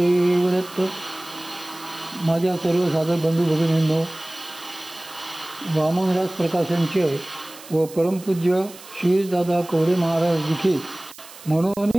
दत्त. माझ्या सर्व साधक बंधू भगिनींनो, वामनराज प्रकाशनचे व परमपूज्य श्रीदादा कवडे महाराज लिखित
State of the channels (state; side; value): noise; right; hiss, 18 dB below the sound